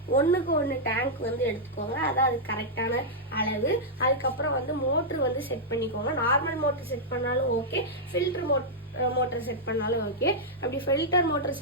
ஒன்றுக்கு ஒன்று டேங்க் வந்து எடுத்துக்கோங்க, அதான் அது கரெக்டான அளவு. அதுக்கப்புறம் வந்து மோட்ரு வந்து செட் பண்ணிக்கோங்க. நார்மல் மோட்ரு செட் பண்ணாலும் ஓகே, ஃபில்டர் மோட்டர் செட் பண்ணாலும் ஓகே. அப்படி ஃபில்டர் மோட்டர்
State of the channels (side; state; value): both; normal; correlation -0.07